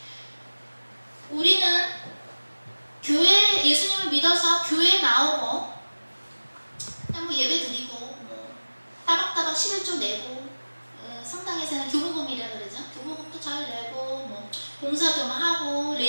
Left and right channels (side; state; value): both; inverted; correlation -1.00